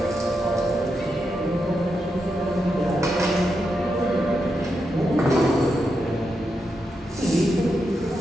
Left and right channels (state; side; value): normal; both; correlation 0.85